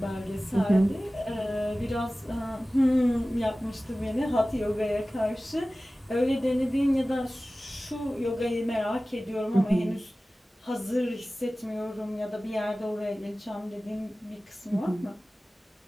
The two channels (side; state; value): both; normal; correlation 0.97